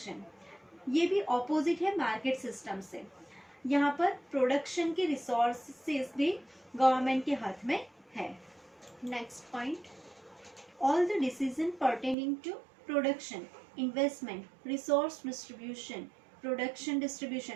ये भी ऑपोजिट है मार्केट सिस्टम से. यहाँ पर प्रोडक्शन के रिसोर्सेज भी गवर्नमेंट के हाथ में है. Next point, all the decisions pertaining to production, investment, resource distribution, production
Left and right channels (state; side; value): drops out; left; at 12.2 s